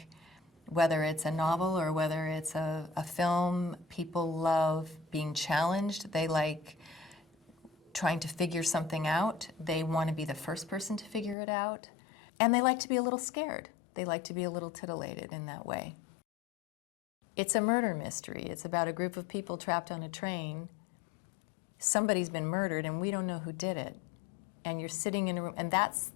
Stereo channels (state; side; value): drops out; right; at 11.4 s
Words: whether it's a novel or whether it's a film, people love being challenged. They like trying to figure something out. They want to be the first person to figure it out. And they like to be a little scared. They like to be a little titillated in that way. It's a murder mystery. It's about a group of people trapped on a train. Somebody's been murdered and we don't know who did it. And you're sitting in a room, and that's